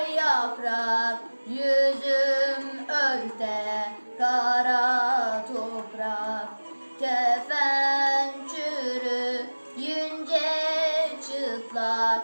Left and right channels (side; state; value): both; inverted; correlation -1.00